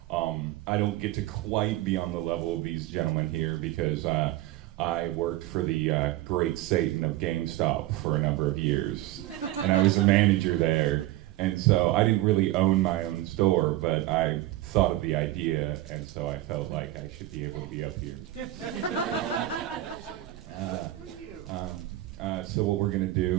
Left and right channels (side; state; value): left; quieter; 15.6 dB